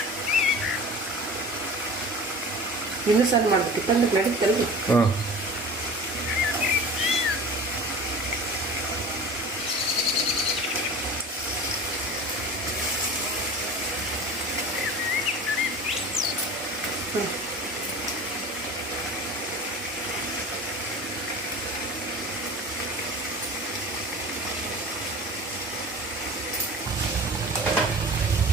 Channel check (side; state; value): both; normal; correlation 0.37